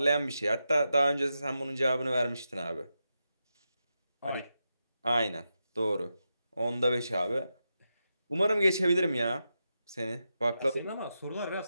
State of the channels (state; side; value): inverted; both; correlation -0.88